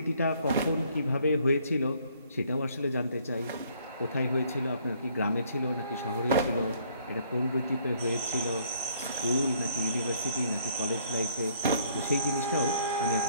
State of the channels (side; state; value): both; inverted; correlation -0.63